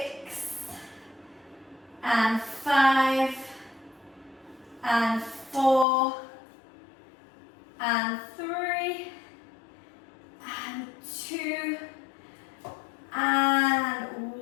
And 5. And 4. And 3. And 2. And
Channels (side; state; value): right; drops out; at 5.9 s